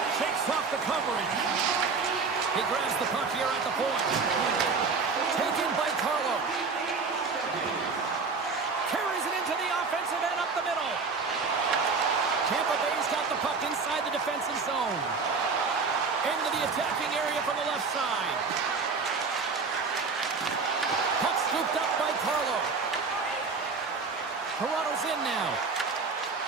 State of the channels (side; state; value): left; quieter; 4.7 dB